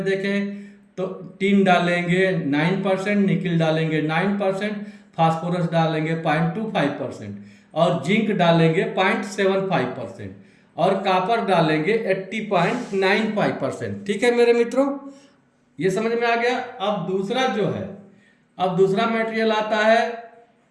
देखें तो टीन डालेंगे 9%, निकिल डालेंगे 9%, फास्फोरस डालेंगे 0.25%, और जिंक डालेंगे 0.75%, और कॉपर डालेंगे 80.95%। ठीक है मेरे मित्रों, ये समझ में आ गया। अब दूसरा मटेरियल आता है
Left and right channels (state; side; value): identical; both; correlation 1.00